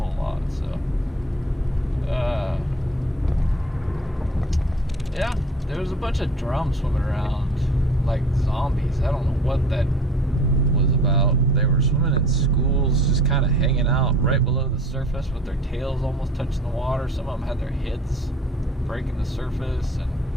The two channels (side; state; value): both; normal; correlation 0.47